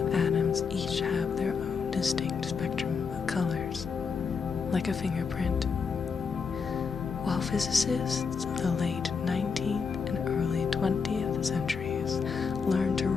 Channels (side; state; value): right; quieter; 5.6 dB